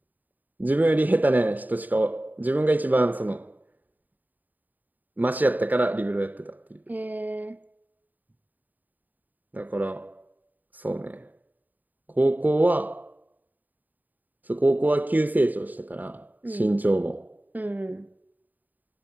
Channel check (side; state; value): left; late; 0.085 ms